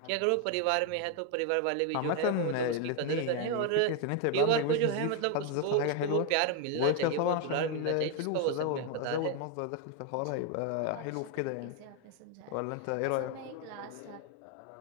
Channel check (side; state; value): both; different; correlation 0.01